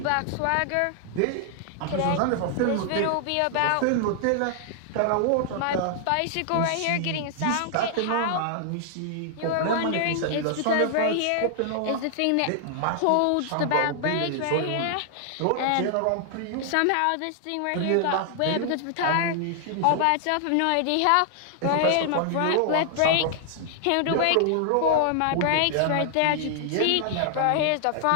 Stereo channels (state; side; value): different; both; correlation 0.00